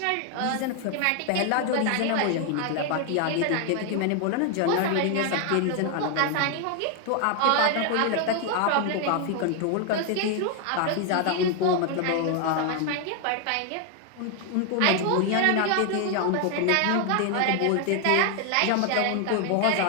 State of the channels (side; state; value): both; different; correlation 0.00